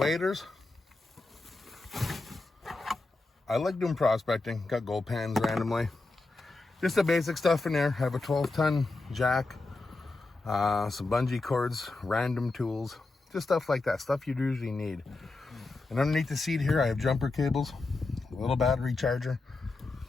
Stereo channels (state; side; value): quieter; right; 3.3 dB